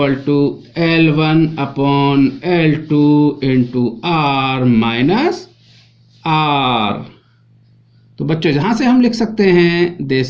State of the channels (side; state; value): both; identical; correlation 1.00